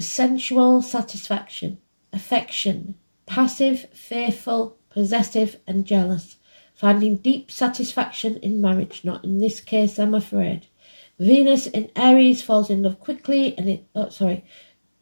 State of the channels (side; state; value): both; inverted; correlation -1.00